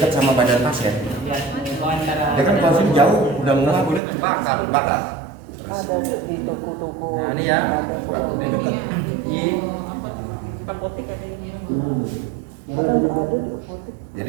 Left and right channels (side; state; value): left; drops out; at 4.0 s